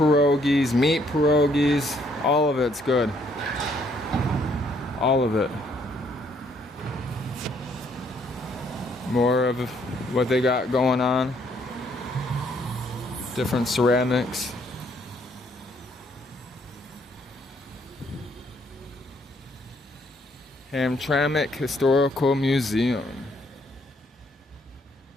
meat pierogies, all of it's good. All of it. More of what they got going on. Different ceramics. Hamtramck Historical Museum.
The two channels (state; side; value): normal; both; correlation 0.68